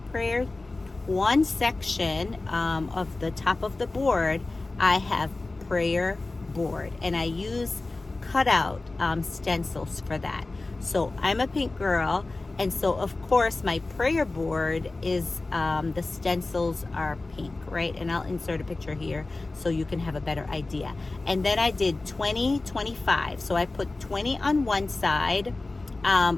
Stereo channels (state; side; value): quieter; right; 3.2 dB